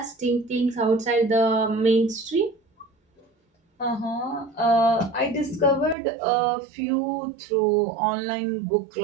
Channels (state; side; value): drops out; left; at 6.0 s